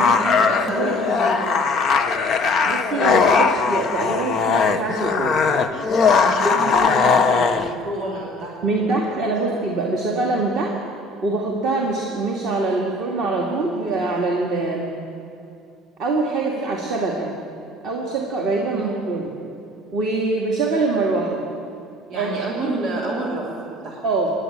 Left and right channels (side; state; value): both; normal; correlation 0.51